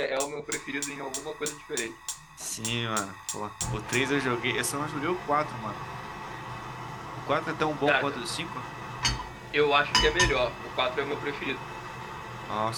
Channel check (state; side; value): identical; both; correlation 1.00